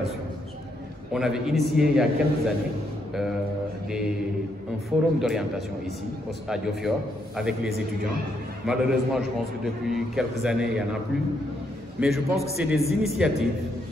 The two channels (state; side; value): normal; both; correlation 0.76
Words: On avait initié il y a quelques années un forum d'orientation ici, à Diofior, avec les étudiants. Malheureusement, je pense que depuis quelques années, il n'y en a plus. Mais je pense que c'est des initiatives